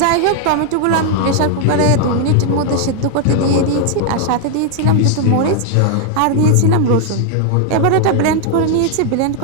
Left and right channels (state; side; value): different; both; correlation 0.00